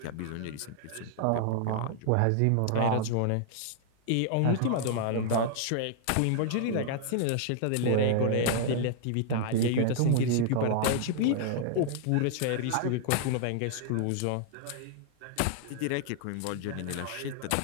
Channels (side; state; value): both; different; correlation -0.01